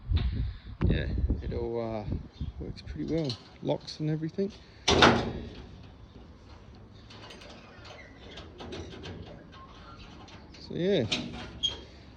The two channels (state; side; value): identical; both; correlation 1.00